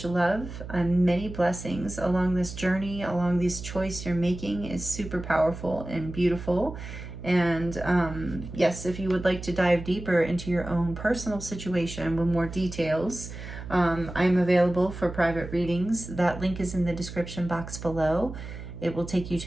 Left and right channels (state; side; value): noise; right; hum, 11 dB below the sound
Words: love and many blessings along this journey, along this choice you're making is super powerful and beautiful. And yes, if you would like to dive deeper into your own personal situation with more details, I'm available for private readings. That link is in the description box below. It will take you